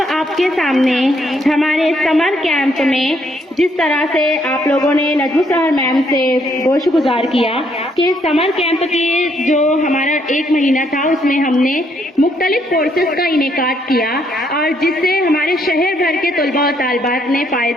आपके सामने हमारे समर कैंप में जिस तरह से आप लोगों ने नजमू सहर मैम से गोशगुजार किया कि समर कैंप के जो हमारा 1 महीना था उसमें हमने मुख्तलिफ कोर्सेज का इनेकाद किया और जिससे हमारे शहर भर के तलबा और तालिबात ने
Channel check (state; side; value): normal; both; correlation 0.71